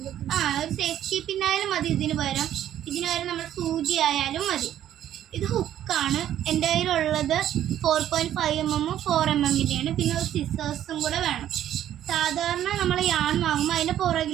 ഒരു സേഫ്റ്റി പിന്നായാലും മതി. ഇതിന് പകരം നമ്മൾ സൂചി ആയാലും മതി. ഇത് ഹുക്കാണ്. എൻ്റെ കയ്യിലുള്ളത് 4.5 mm 4 mm. പിന്നെ ഒരു സിസേഴ്സും കൂടെ വേണം. സാധാരണ നമ്മൾ യാൺ വാങ്ങുമ്പോൾ അതിൻ്റെ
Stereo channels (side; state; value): left; quieter; 11.4 dB